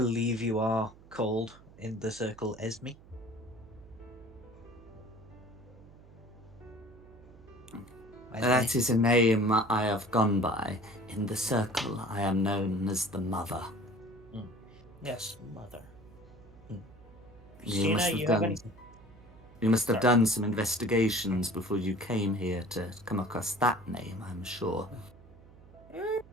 you are called in the circle Esme. That is a name I have gone by. In the circle, I am known as the Mother. Yes, mother. You Christina, you have any... You must have Sorry. done some investigations before you came here to come across that name, I'm sure.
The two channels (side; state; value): right; noise; hum, 22 dB below the sound